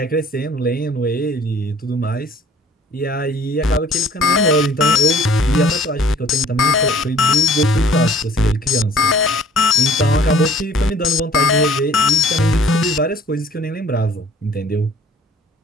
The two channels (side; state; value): both; normal; correlation 0.54